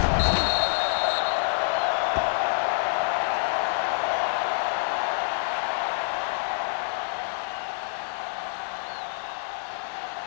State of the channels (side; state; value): right; silent; digital silence